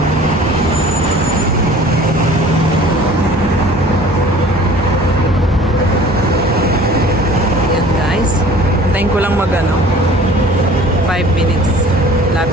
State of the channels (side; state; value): both; normal; correlation 0.47